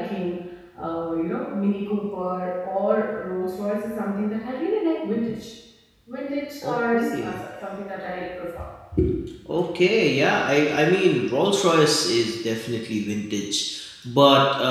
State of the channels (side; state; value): both; identical; correlation 1.00